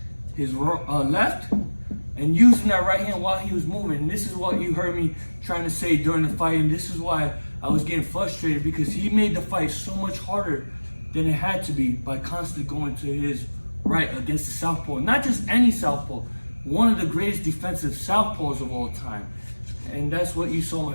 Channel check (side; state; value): both; inverted; correlation -1.00